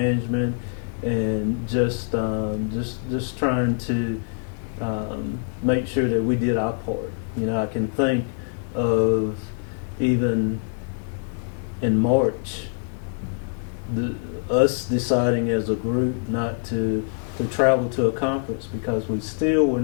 and just trying to make sure that we did our part. You know, I can think of even in March, us deciding as a group not to travel to a conference because we still were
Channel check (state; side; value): silent; right; 62 dB below the other